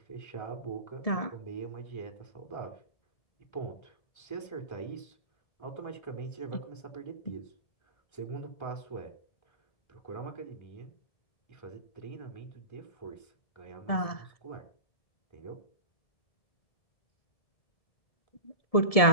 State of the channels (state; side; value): late; right; 1.7 ms